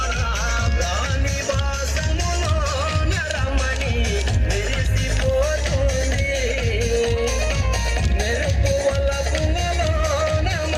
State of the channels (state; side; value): identical; both; correlation 1.00